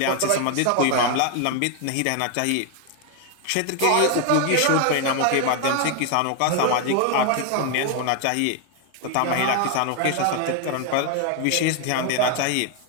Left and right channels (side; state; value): both; different; correlation 0.01